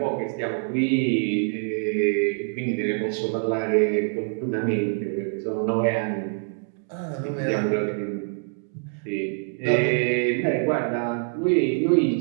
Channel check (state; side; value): silent; left; 58 dB below the other